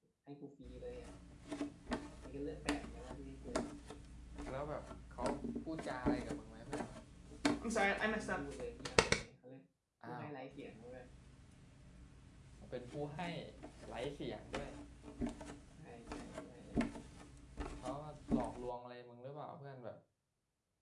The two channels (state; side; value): identical; both; correlation 1.00